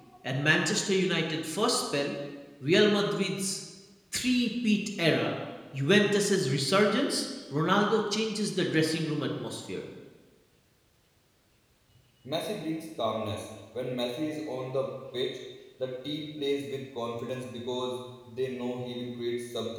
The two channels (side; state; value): both; identical; correlation 1.00